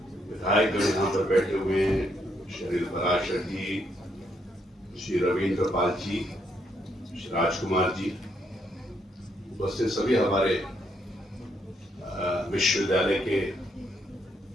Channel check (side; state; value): both; normal; correlation 0.75